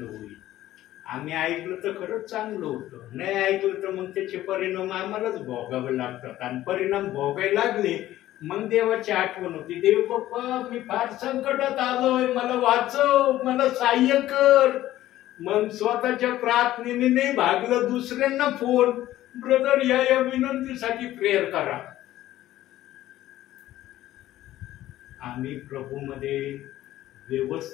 होईल. आम्ही ऐकलं तर खरंच चांगलं होतं, नाही ऐकलं तर मग त्याचे परिणाम आम्हालाच भोगावे लागतात. आणि परिणाम भोगायला लागले मग देवाची आठवण होती, देव बाप्पा मी फार संकटात आलोय, मला वाचव, मला सहाय्य कर. मग स्वतःच्या प्रार्थनेने नाही भागलं, दुसऱ्यांना फोन, ब्रदर या विनंतीसाठी प्रेयर करा. आम्ही प्रभूमध्ये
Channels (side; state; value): right; quieter; 14.4 dB